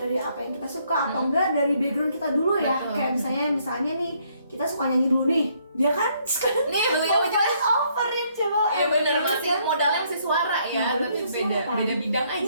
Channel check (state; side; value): inverted; both; correlation -0.69